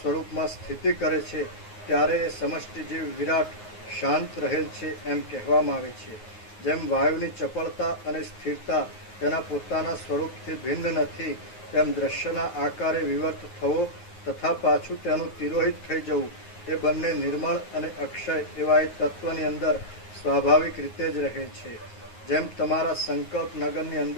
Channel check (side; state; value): right; late; 9.5 ms